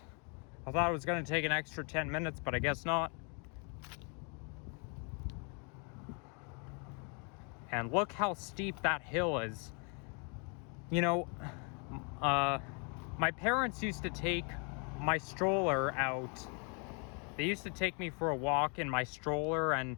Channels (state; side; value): quieter; right; 36.1 dB